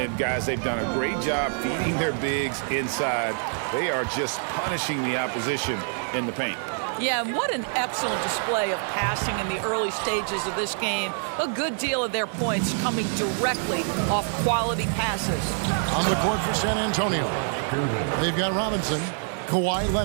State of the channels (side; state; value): left; silent; 61 dB below the other